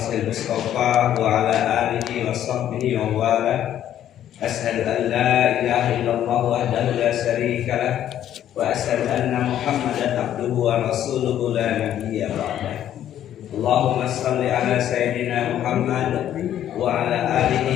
Mustafa wa ala alihi wa sahbihi wa wala. Asyhadu an la ilaha illallah wahdahu la syarika lah wa asyhadu anna Muhammadan abduhu wa rasuluhu la nabiyya ba'dah. Allahumma shalli ala sayyidina Muhammad wa ala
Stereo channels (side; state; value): right; quieter; 11.1 dB